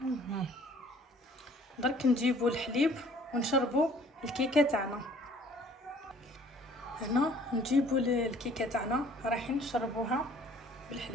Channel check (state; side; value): normal; both; correlation 0.55